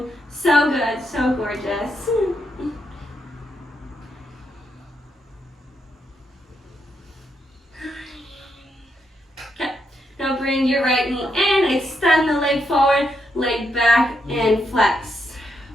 so good, so gorgeous. Okay, now bring your right knee in, extend the leg forward, leg back, and flex.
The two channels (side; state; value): both; normal; correlation 0.80